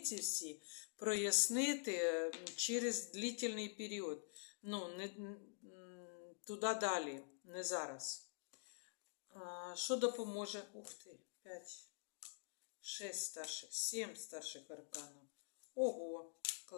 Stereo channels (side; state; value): right; silent; digital silence